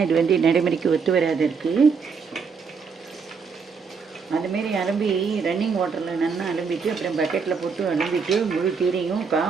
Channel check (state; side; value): quieter; left; 5.5 dB